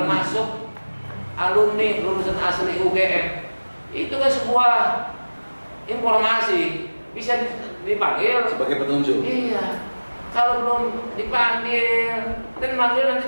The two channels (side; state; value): both; inverted; correlation -1.00